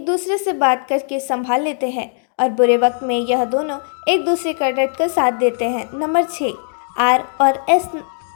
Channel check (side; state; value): right; silent; digital silence